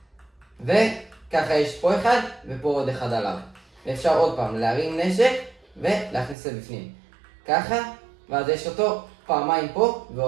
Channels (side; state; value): left; drops out; at 6.4 s